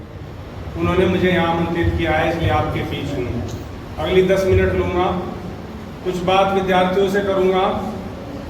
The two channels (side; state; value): both; identical; correlation 1.00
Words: उन्होंने मुझे यहाँ आमंत्रित किया है, इसलिए आपके बीच हूँ। अगली 10 मिनट लूँगा, कुछ बात विद्यार्थियों से करूँगा,